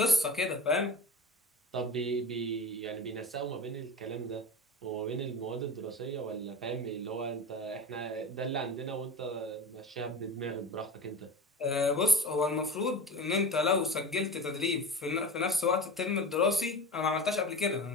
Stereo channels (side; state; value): both; normal; correlation 0.32